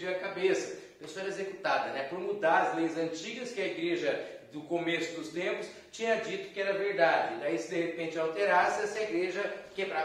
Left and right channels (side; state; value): both; identical; correlation 1.00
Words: a cabeça. A pessoa era executada, né? Por mudar as leis antigas que a igreja do começo dos tempos tinha dito que era verdade. Daí, se de repente alterasse, essa igreja